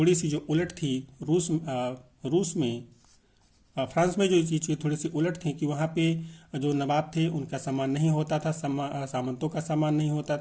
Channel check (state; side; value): identical; both; correlation 1.00